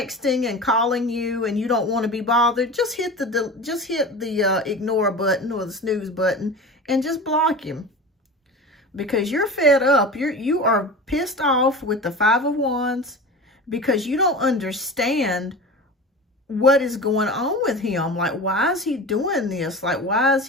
and calling you and you don't want to be bothered, just hit the ignore button or the snooze button and just block him. Because you're fed up. You are pissed off with the 5 of Wands because you don't understand what is going on with him. Like, why is he doing this? Like, why is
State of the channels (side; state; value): both; normal; correlation 0.32